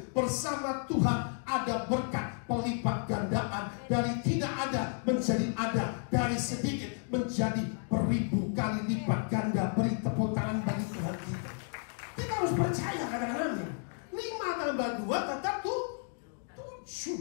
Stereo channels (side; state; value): right; silent; 56 dB below the other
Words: Bersama Tuhan ada berkat pelipat gandaan. Dari tidak ada menjadi ada, dari sedikit menjadi beribu kali lipat ganda. Beri tepuk tangan bagi Tuhan kita. Kita harus percaya, katakan amin. 5 tambah 2 tetap